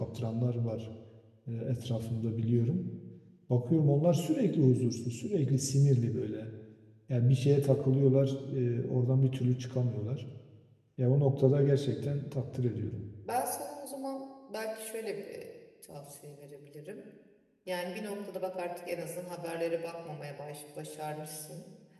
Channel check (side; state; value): both; identical; correlation 1.00